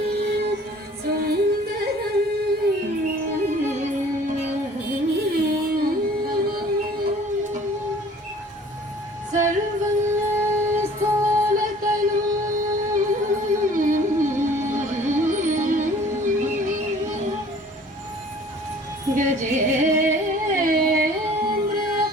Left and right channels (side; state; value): both; normal; correlation 0.51